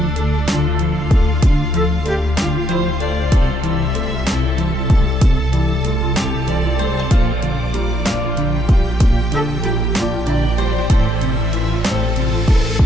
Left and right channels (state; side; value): normal; both; correlation 0.72